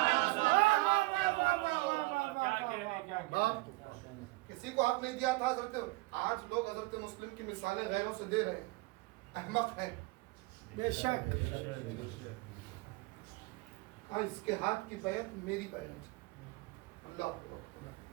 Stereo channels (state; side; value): quieter; left; 23.0 dB